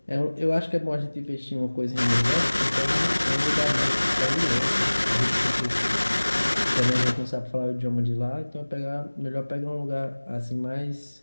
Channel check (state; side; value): inverted; both; correlation -1.00